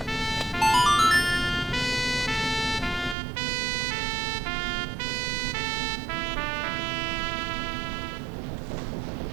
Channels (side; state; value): left; drops out; at 3.2 s